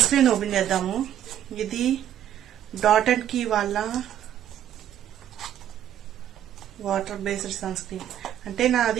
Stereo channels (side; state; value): left; quieter; 10.9 dB